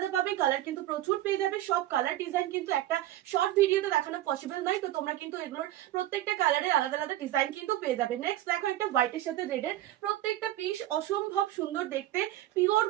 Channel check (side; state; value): left; quieter; 14.2 dB